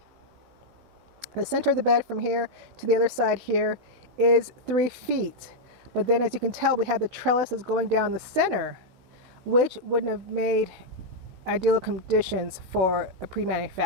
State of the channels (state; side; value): late; left; 16 ms